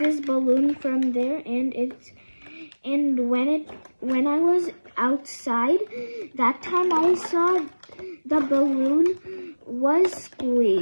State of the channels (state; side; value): inverted; both; correlation -1.00